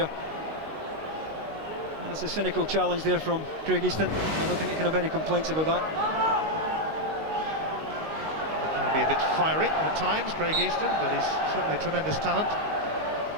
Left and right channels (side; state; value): left; late; 19 ms